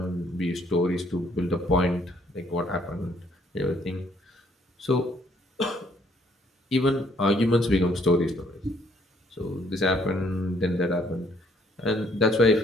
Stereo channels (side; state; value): both; normal; correlation 0.66